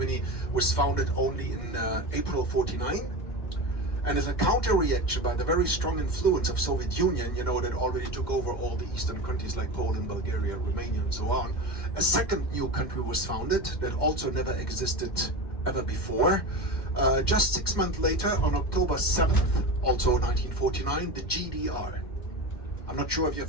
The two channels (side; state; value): right; late; 2.1 ms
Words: was founded only in April 49. And as a counter-reaction by the very strong influence of Soviet Union, you know, that already took over all the eastern countries like Poland, Bulgaria, Romania, and so on, a second new country was founded that also never existed ever before. Just 6 months later, on October 7th, also 1949, the GDR. I'm not sure if you're